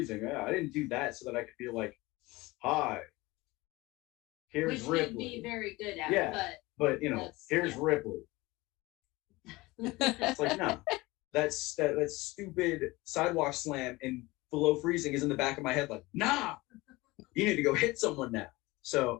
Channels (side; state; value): right; quieter; 21.3 dB